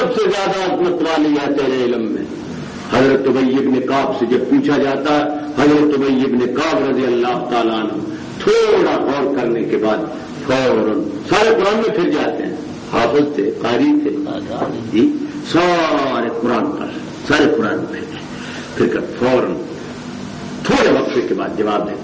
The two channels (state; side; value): identical; both; correlation 1.00